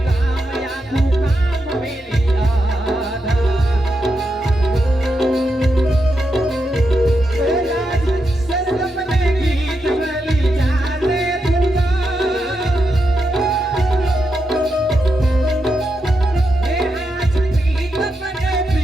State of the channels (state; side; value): normal; both; correlation 0.85